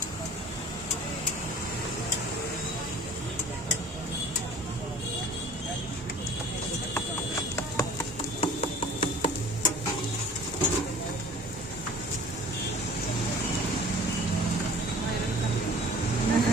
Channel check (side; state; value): both; normal; correlation 0.47